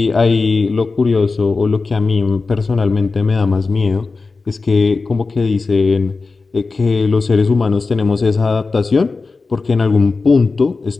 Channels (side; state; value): right; quieter; 4.1 dB